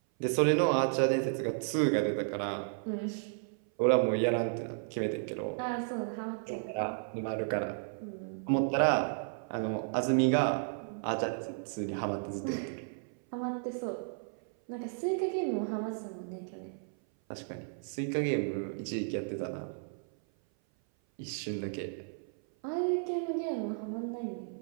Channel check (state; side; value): silent; left; 56 dB below the other